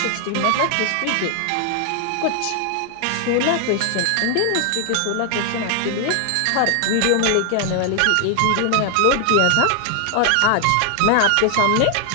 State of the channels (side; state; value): both; different; correlation 0.00